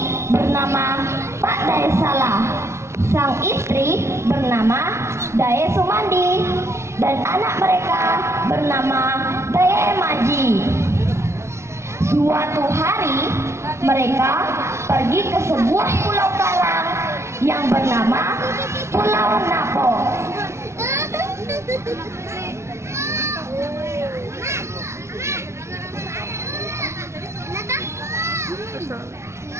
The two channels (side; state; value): left; late; 0.13 ms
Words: bernama Pak Daesala, sang istri bernama Dae Sumandi, dan anak mereka bernama Dae Maji. Suatu hari mereka pergi ke sebuah pulau karang yang bernama Pulau Napo.